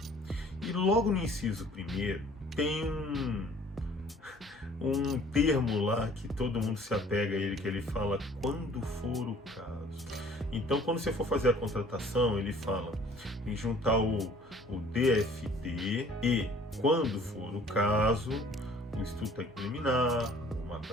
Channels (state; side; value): normal; both; correlation 0.53